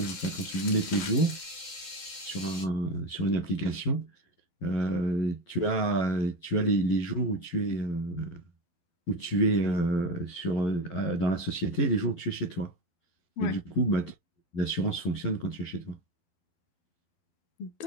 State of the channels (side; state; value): right; late; 12 ms